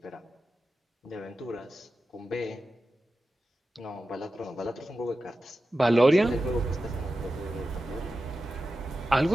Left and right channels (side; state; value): both; normal; correlation 0.93